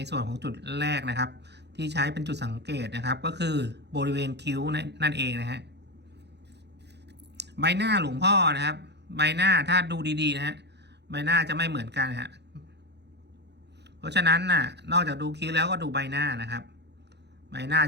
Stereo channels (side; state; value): left; late; 0.50 ms